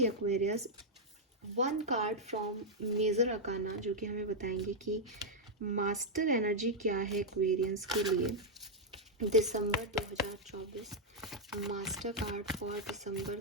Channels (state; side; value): normal; both; correlation -0.02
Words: Aquarius, 1 card from major arcana जो कि हमें बताएंगे कि मास्टर एनर्जी क्या है एक्वेरियंस के लिए दिसंबर 2024। Master card for